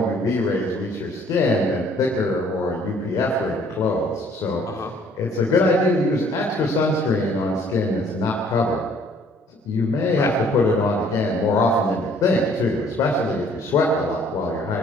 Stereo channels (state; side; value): normal; both; correlation 0.59